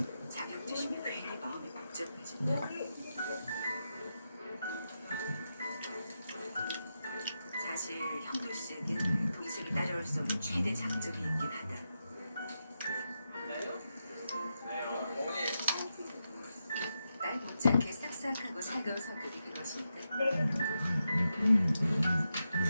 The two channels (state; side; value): inverted; both; correlation -0.87